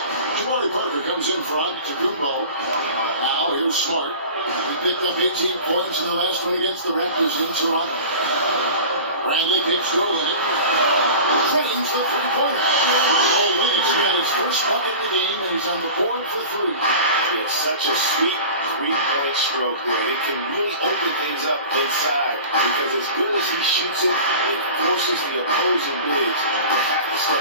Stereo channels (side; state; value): both; inverted; correlation -0.37